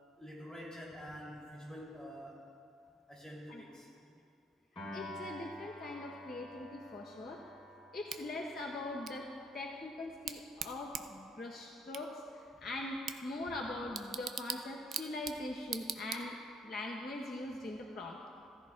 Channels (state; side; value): normal; both; correlation 0.67